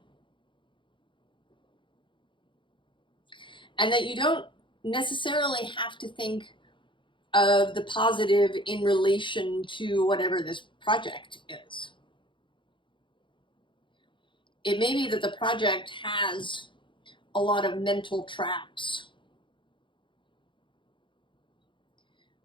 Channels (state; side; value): late; right; 0.24 ms